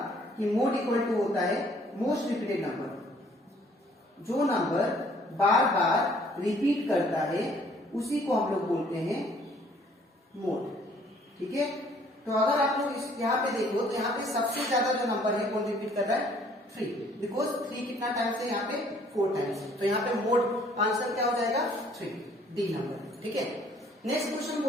कि मोड इक्वल टू होता है मोस्ट रिपीटेड नंबर। जो नंबर बार बार रिपीट करता है उसी को हम लोग बोलते हैं मोड, ठीक है। तो अगर आप लोग इस यहाँ पे देखो तो यहाँ पे सबसे ज्यादा जो नंबर है कौन रिपीट कर रहा है, 3, बिकॉज 3 कितना टाइम्स है यहाँ पे 4 टाइम्स। तो यहाँ पे मोड आंसर क्या हो जाएगा 3, डी नंबर, ठीक है। नेक्स्ट क्वेश्चन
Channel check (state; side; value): normal; both; correlation 0.60